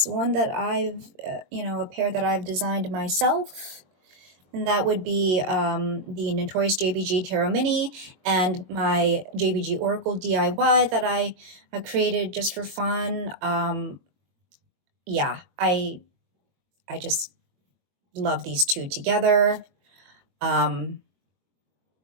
one that I've, a pair that I've designed myself, and that would be the Notorious JBG Tarot Mini and my JBG Oracle DIY that I created just for fun. Yeah, I just love these two together. I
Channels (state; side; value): late; left; 22 ms